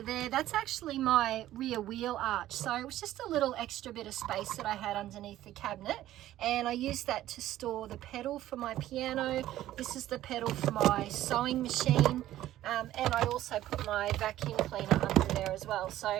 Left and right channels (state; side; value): quieter; left; 13.8 dB